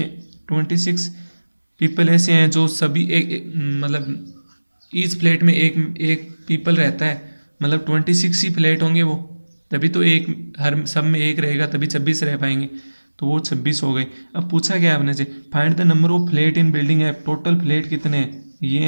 26 पीपल ऐसे हैं जो सभी मतलब ईच फ्लैट में एक पीपल रहता है, मतलब 26 ही फ्लैट होंगे वो, तभी तो एक हर सब में एक रहेगा, तभी 26 रह पाएंगे, तो वो 26 हो गए। अब पूछा गया आपने से find the number of flat in building app. Total flat कितने हैं, ये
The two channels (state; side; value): inverted; both; correlation -1.00